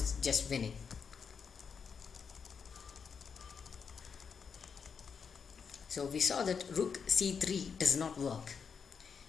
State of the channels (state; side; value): quieter; right; 6.2 dB